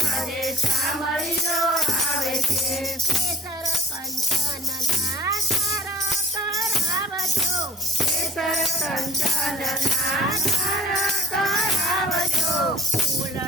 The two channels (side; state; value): both; normal; correlation 0.51